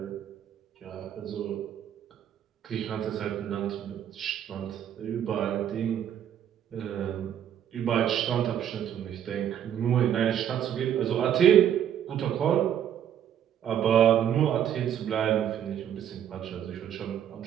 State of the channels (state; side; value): quieter; left; 9.9 dB